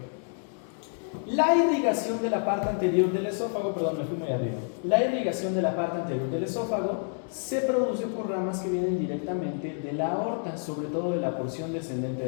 la irrigación de la parte anterior del esófago, perdón, me fui muy arriba. La irrigación de la parte anterior del esófago se produce por ramas que vienen directamente de la aorta, sobre todo de la porción descendente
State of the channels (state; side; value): silent; right; 59 dB below the other